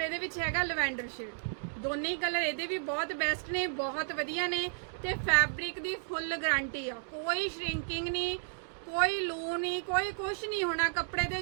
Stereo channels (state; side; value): silent; left; digital silence